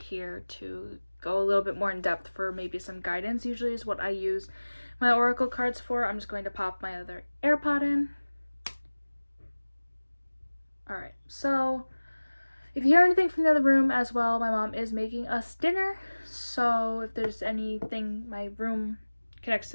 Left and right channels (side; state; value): both; inverted; correlation -1.00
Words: to go a little bit more in depth for maybe some guidance. Usually is what I use my oracle cards for. I'm just going to pop my other AirPod in. Alright, so if you hear anything from the other room as well, my mom is making us dinner. So if there's anything, my room connects to